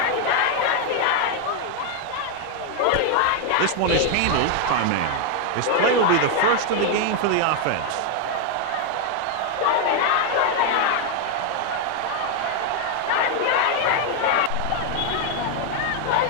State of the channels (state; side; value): different; both; correlation 0.00